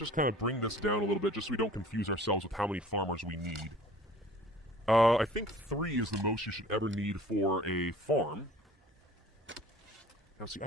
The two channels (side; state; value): both; normal; correlation 0.48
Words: kind of bring this down a little bit just so we don't confuse ourselves with how many farmers we need. I think 3 is the most you should ever need for a farm. Now see, I